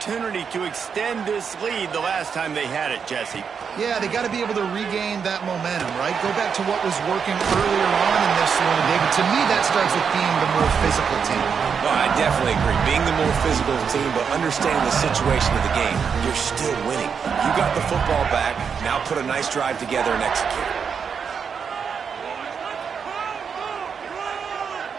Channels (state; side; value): quieter; left; 6.5 dB